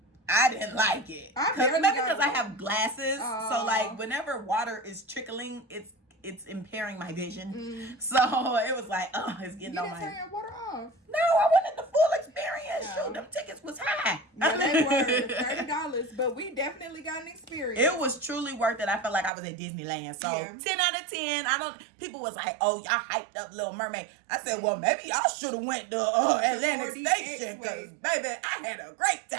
I didn't like it. Maybe because I have glasses, so like whenever water is trickling, it's impairing my vision. So it was like, oh, it's getting on my. You didn't turn your water off. No, I wanted the full experience. No. Shoot, them tickets was high. Yeah, they were $30, but we definitely got an experience. It was truly worth it. I felt like I was at Disneyland. So Yeah. 10 out of 10. People was like, oh, y'all hyped up Little Mermaid. I said, well, maybe y'all should have went to Atlantic 4DX Station, because baby, I had a great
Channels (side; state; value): left; drops out; at 19.3 s